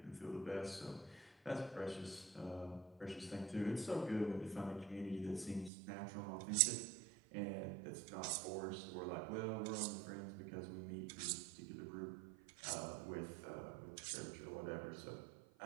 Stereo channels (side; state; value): left; drops out; at 5.7 s